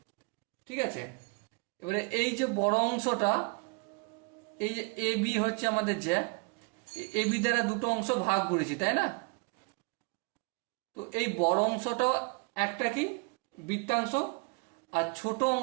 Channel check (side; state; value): left; quieter; 32.3 dB